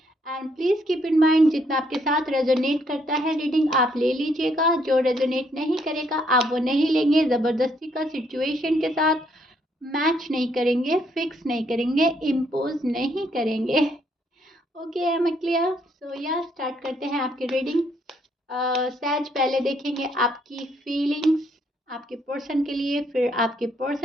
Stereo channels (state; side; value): normal; both; correlation 0.71